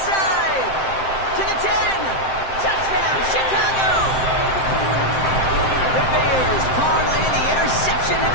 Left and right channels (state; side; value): late; right; 7.7 ms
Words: To the 10. Touchdown, Chicago. The Bears parlay the interception